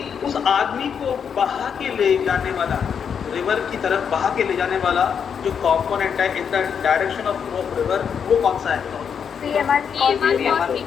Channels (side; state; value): right; quieter; 7.2 dB